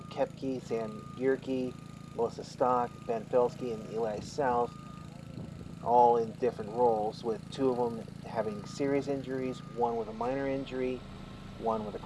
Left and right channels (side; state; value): both; identical; correlation 1.00